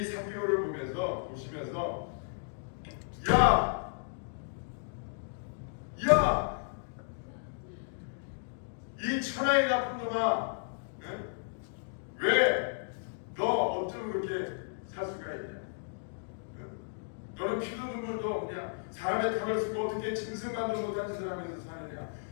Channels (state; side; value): silent; right; digital silence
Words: 삭개오를 보시면서 야! 이 천하의 나쁜 놈아 왜 너 어쩜 그렇게 살 수가 있냐? 너는 피도 눈물도 그냥 사람의 탕을 쓰고 어떻게 짐승만도 못한 짓을 하면서 사느냐?